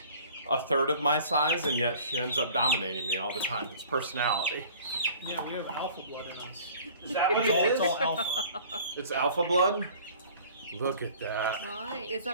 a third of my size, and yet she ends up dominating me all the time. It's personality. Yeah, we have alpha blood in us. Is that what It's all alpha. It's alpha blood? Look at that. Why? Is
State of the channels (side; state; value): both; inverted; correlation -0.48